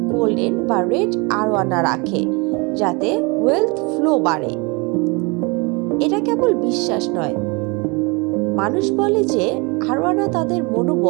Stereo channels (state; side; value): quieter; left; 28.9 dB